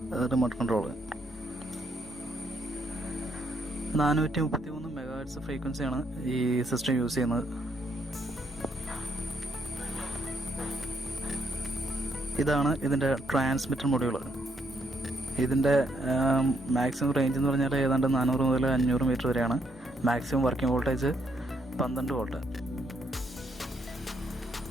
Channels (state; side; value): normal; both; correlation 0.74